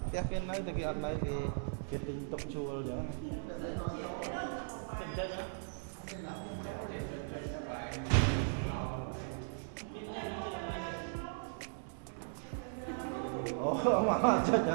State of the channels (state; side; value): silent; left; 53 dB below the other